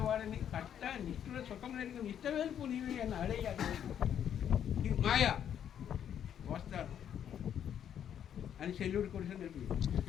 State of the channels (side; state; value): right; quieter; 9.4 dB